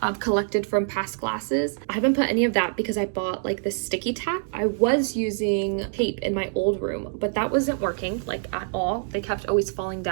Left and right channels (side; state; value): left; silent; digital silence